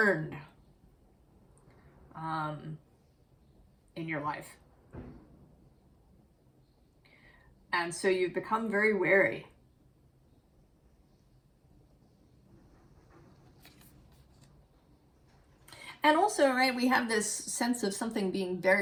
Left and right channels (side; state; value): both; identical; correlation 1.00